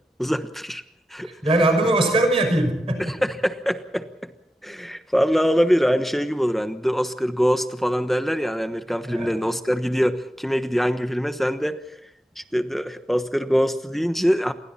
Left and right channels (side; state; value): both; normal; correlation 0.90